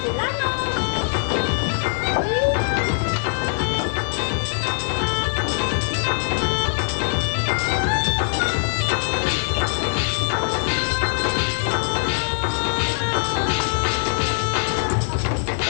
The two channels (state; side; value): silent; right; 64 dB below the other